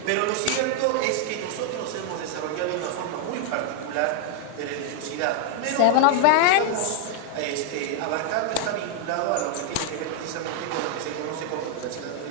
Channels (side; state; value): both; different; correlation 0.00